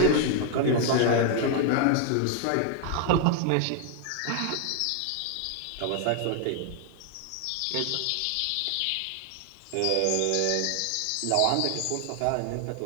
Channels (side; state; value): both; different; correlation 0.00